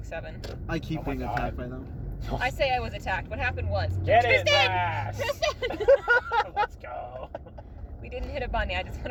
7. I keep Oh my being God. attacked by them. I say I was attacked. What happened was... Get it, Tristan! Vash! Tristan! Let's go. We didn't hit a bunny. I just want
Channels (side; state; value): both; identical; correlation 1.00